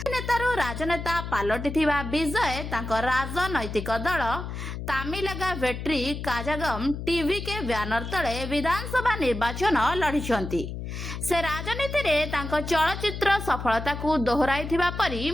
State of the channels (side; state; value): left; noise; hum, 7 dB below the sound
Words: नेतारू राजनेता पालटिथिबा विजय तांको राजनैतिक दल तामिलगा वेट्री काजागम टीवी के बैनर तले विधानसभा निर्वाचन लड़िछंती। से राजनीति रे तांको चलचित्र सफलता को दोहराइथिबा परी